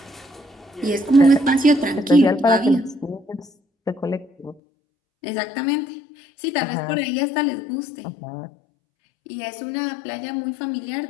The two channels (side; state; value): right; drops out; at 4.5 s